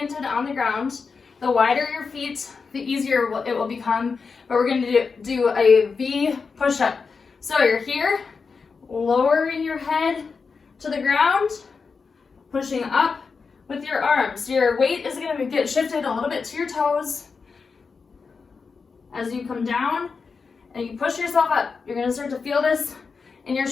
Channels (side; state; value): right; quieter; 5.0 dB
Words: on the ground. The wider your feet, the easier it will become. But we're gonna do a V push-up. So you're here, lowering your head to the ground, pushing up with your arms. Your weight is gonna get shifted a little bit to your toes. As you come down and you push yourself up, you're gonna start to feel this in your